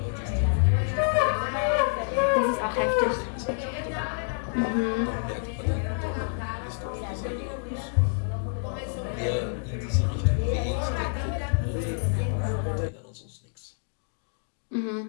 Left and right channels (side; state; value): right; silent; digital silence